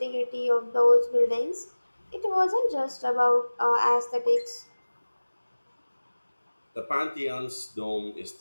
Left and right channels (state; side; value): inverted; both; correlation -1.00